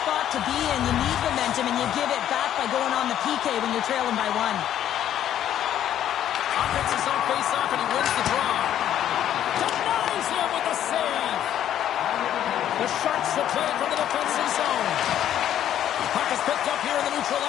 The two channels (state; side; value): quieter; right; 11.0 dB